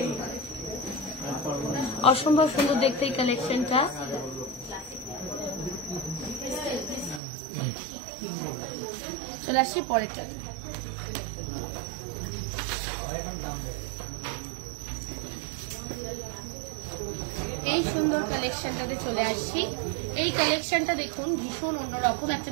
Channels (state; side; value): drops out; left; at 7.2 s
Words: অসম্ভব সুন্দর দেখতে এই কালেকশনটা। চলে আসছি পরেরটা। এই সুন্দর কালেকশনটাতে চলে আসছি। এই কালেকশনটা দেখুন, ভীষণ অন্যরকম, একটা